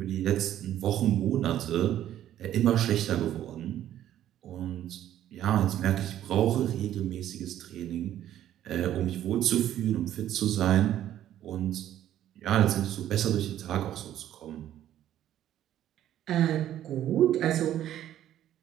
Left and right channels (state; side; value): quieter; left; 11.9 dB